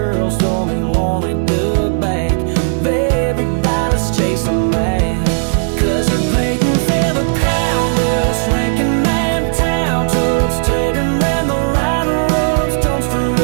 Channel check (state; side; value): silent; left; digital silence